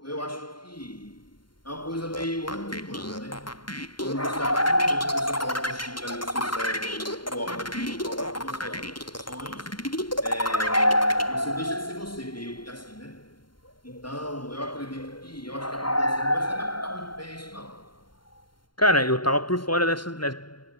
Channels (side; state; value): right; late; 0.72 ms